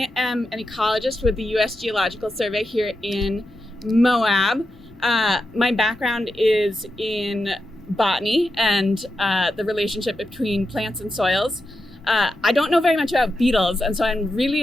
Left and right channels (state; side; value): normal; both; correlation 0.88